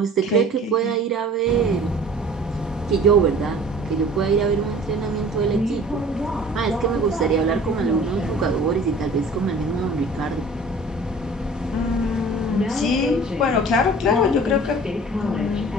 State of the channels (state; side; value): normal; both; correlation 0.46